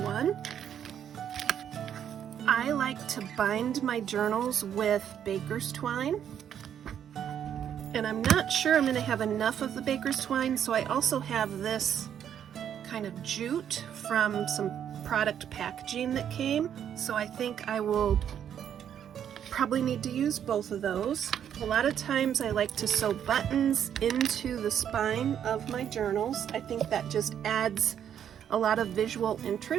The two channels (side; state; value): left; quieter; 9.3 dB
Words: I like to bind my journals with baker's twine, and I'm not sure I'm going to have enough of the baker's twine, so I also have this kind of jute from some product packaging that came, so I think I will probably need to use both of those. A lot of times I like to sew buttons into the spine of my journals. I think that just adds a lot of visual